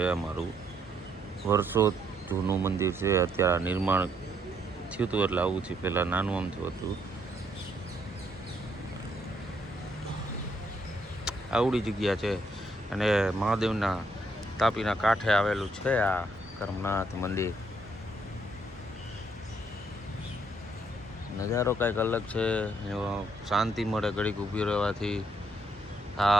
અમારું. વર્ષો જૂનું મંદિર છે. અત્યારે નિર્માણ થયું હતું એટલે આવું છે. પહેલાં નાનું આમ થયું હતું. આવડી જગ્યા છે અને મહાદેવના તાપીના કાંઠે આવેલું છે આ કરમનાથ મંદિર. નજારો કંઈક અલગ છે, શાંતિ મળે ઘડીક ઊભી રહેવાથી.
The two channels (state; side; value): normal; both; correlation 0.72